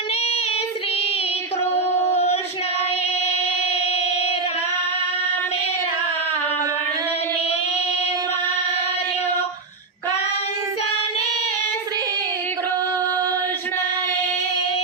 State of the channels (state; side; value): quieter; left; 4.0 dB